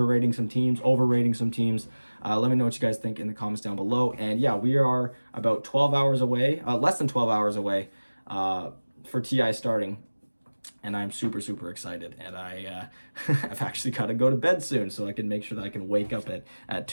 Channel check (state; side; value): inverted; both; correlation -1.00